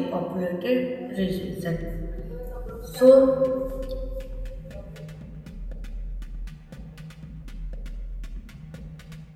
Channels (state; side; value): identical; both; correlation 1.00